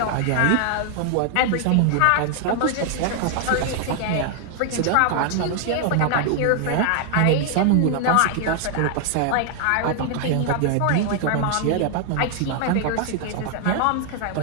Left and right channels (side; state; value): both; different; correlation 0.00